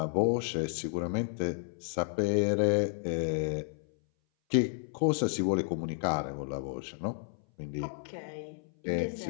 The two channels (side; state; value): right; silent; 57 dB below the other